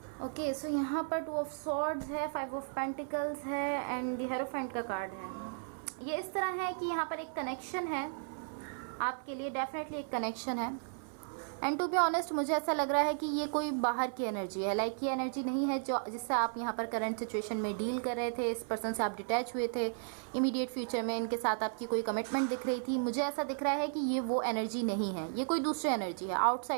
Okay, so यहाँ पर 2 ऑफ सॉर्ड्स है, 5 ऑफ पेंटिकल्स है एंड द हेरोफेंट का कार्ड है। ये इस तरह है कि यहाँ पर एक कनेक्शन है आपके लिए, डेफिनेटली एक कनेक्शन है। एंड टू बी ऑनेस्ट मुझे ऐसा लग रहा है कि ये कोई बाहर की एनर्जी है, लाइक ये एनर्जी नहीं है जो जिससे आप यहाँ पर करंट सिचुएशन में डील कर रहे थे, इस पर्सन से आप डिटैच हुए थे, इमीडिएट फ्यूचर में इनके साथ आपकी कोई कमिटमेंट दिख रही थी। मुझे ऐसा दिख रहा है कि ये वो एनर्जी नहीं है, ये कोई दूसरी एनर्जी है,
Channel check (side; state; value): left; silent; 55 dB below the other